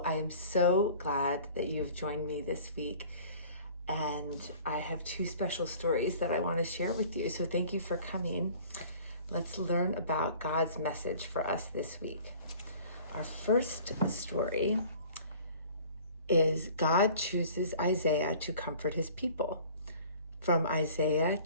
I am so glad that you have joined me this week. And I have two special stories that I want to share with you. So thank you for coming. Let's learn about God's message for us this week. Our first story is God chooses Isaiah to comfort his people, from Isaiah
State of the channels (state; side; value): inverted; both; correlation -0.48